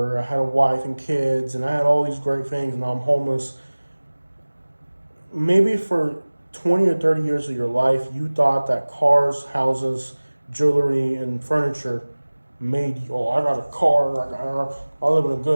I had a wife and kids, and I had all these great things, and now I'm homeless. Maybe for 20 or 30 years of your life, you thought that cars, houses, jewelry, and furniture made you, oh, I got a car, I live in a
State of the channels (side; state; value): both; inverted; correlation -1.00